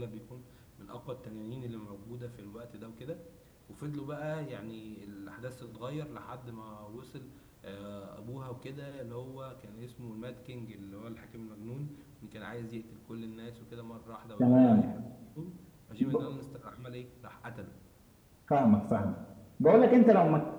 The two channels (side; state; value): both; identical; correlation 1.00